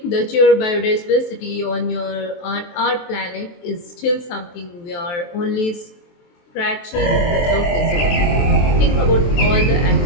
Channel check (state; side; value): late; right; 23 ms